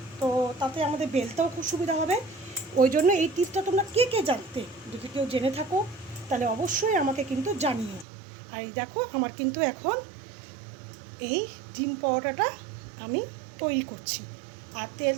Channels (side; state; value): left; drops out; at 8.1 s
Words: তো তাতে আমাদের বেলতেও খুব সুবিধা হবে। ওই জন্য এই টিপসটা তোমরা কে কে জানতে, যদি কেউ জেনে থাকো তাহলে অবশ্যই আমাকে কিন্তু জানিও। আর দেখো আমার কিন্তু এখন এই ডিম পরোটাটা আমি তৈরি করছি। আর তেল